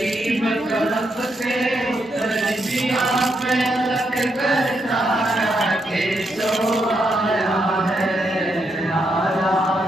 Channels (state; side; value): normal; both; correlation 0.80